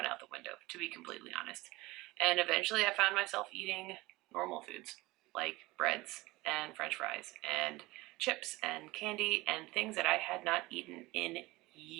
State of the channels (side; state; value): left; quieter; 20.7 dB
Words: out the window, to be completely honest. And eventually I found myself eating normal foods like breads and french fries and chips and candy and things that I had not eaten in